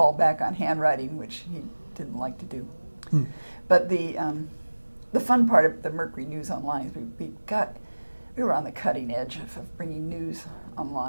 back on handwriting, which he didn't like to do. But the fun part of the Mercury News Online is we were on the cutting edge of bringing news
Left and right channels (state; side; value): inverted; both; correlation -1.00